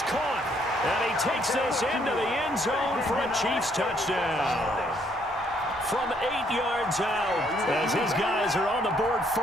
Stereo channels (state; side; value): normal; both; correlation 0.68